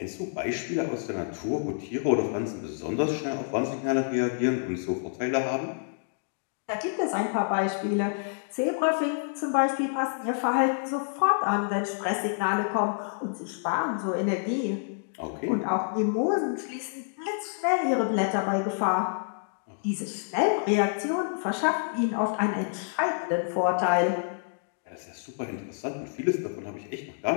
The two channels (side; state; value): right; silent; digital silence